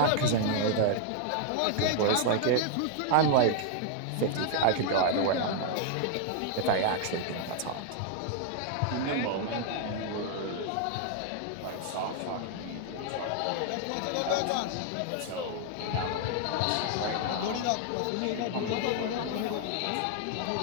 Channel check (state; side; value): different; both; correlation 0.00